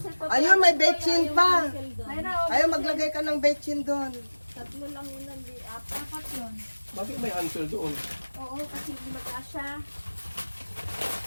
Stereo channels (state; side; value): inverted; both; correlation -1.00